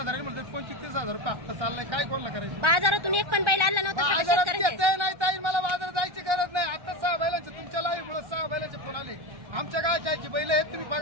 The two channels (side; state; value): left; late; 1.3 ms